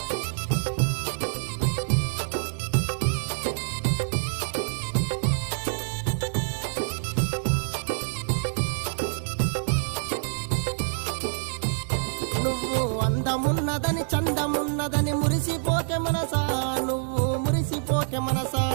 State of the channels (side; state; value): left; silent; digital silence